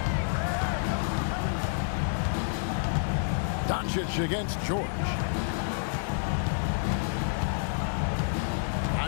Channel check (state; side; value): silent; right; 59 dB below the other